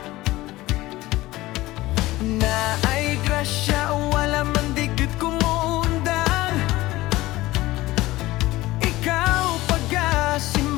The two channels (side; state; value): right; quieter; 18.2 dB